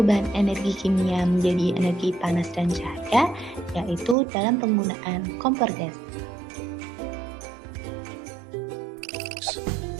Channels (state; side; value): drops out; left; at 4.2 s